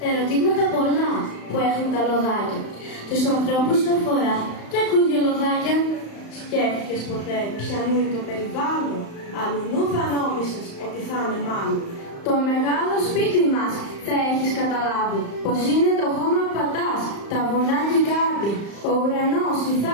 Ερωτήματα πολλά που έχουν τα λοδάκια. Τους ανθρώπους αφορά και ακούγε λοδάκια. Σκέφτηκες ποτέ ποιανού είναι το περιβάλλον? Αλλουνού θα νόμισες ότι θα είναι μάλλον. Το μεγάλο σπίτι μας θα έχεις καταλάβει πως είναι το χώμα που πατάς, τα βουνά και η κάρπη, ο ουρανός, η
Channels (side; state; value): right; late; 35 ms